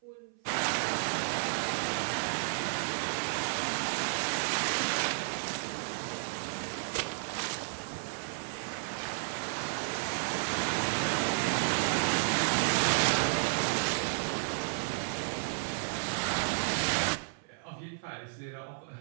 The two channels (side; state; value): left; silent; 56 dB below the other